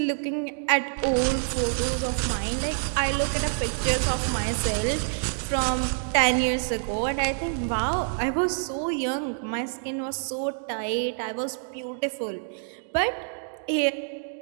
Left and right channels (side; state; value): left; silent; digital silence